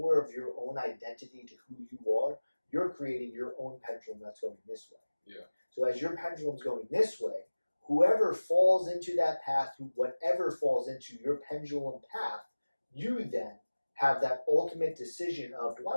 of your own identity to who you are, you're creating your own pendulum that's going this way. Yeah. So as your pendulum's going this way, whoever falls into that path, whatever falls into your pendulum path, you then have that ultimate decision of, do I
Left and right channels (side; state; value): both; inverted; correlation -1.00